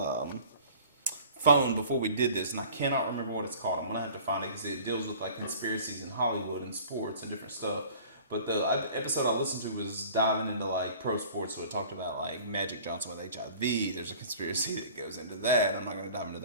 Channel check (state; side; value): inverted; both; correlation -0.47